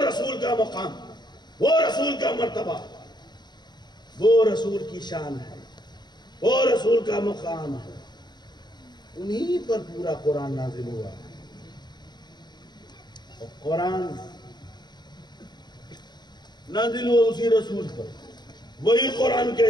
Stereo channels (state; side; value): late; right; 0.21 ms